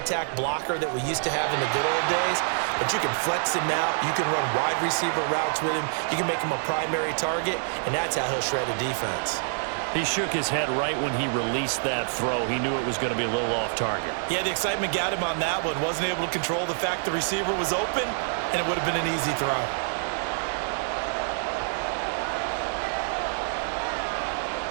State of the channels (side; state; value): left; silent; digital silence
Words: blocker that we used to have in the good old days, but you can flex him out. You can run wide receiver routes with him. You can make him a primary target, and that's how he'll shred a defense. He shook his head right when he released that throw. He knew it was going to be a little off target. Yeah, the excitement got him on that one. Wasn't able to control the fact the receiver was open, and it would have been an easy throw.